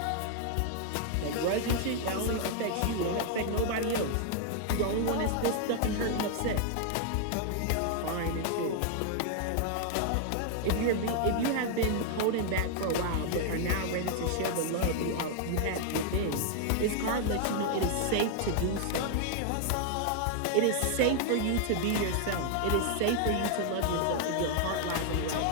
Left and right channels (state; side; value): different; both; correlation 0.00